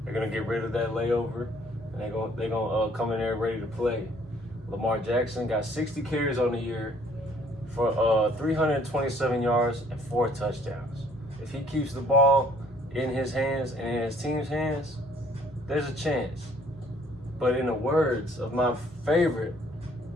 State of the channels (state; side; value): normal; both; correlation 0.60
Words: They're gonna get rid of that layover, and they're gonna come in there ready to play. Lamar Jackson got 60 carries on the year for 327 yards and 4 touchdowns. If he keeps the ball in his hands and in his team's hands, there's a chance. But in the words of my favorite